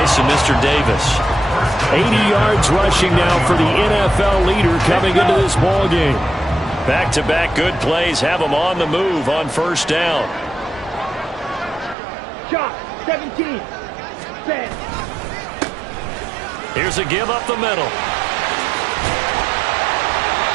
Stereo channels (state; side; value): drops out; left; at 12.0 s